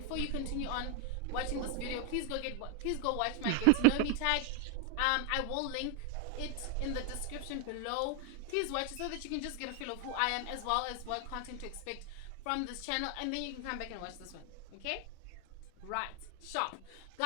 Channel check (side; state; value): both; different; correlation 0.01